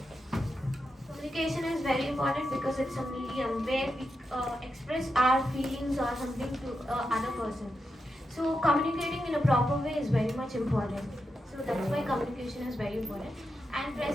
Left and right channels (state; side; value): normal; both; correlation 0.87